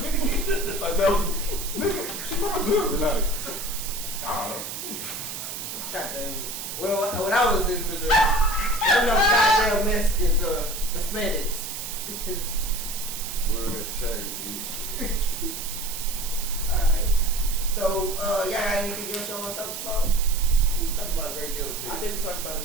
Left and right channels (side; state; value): right; noise; hiss, 7 dB below the sound